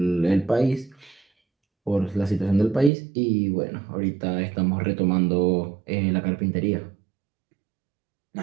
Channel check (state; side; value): drops out; left; at 2.9 s